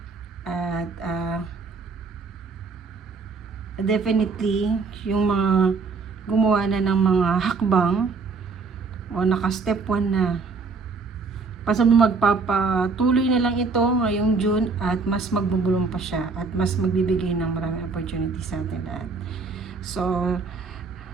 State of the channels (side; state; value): left; quieter; 4.4 dB